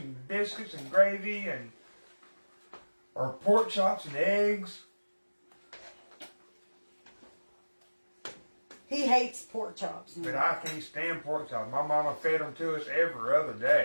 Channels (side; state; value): both; inverted; correlation -1.00